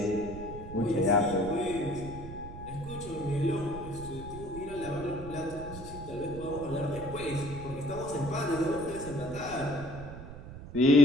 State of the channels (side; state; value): right; noise; rumble, 12 dB below the sound